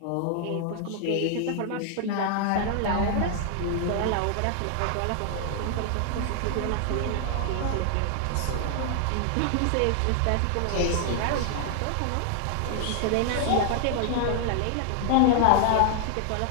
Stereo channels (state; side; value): different; both; correlation 0.00